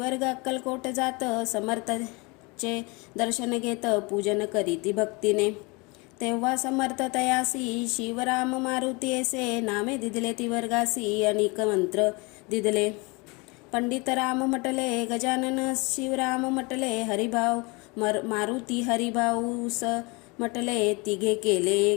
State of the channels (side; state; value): right; quieter; 27.7 dB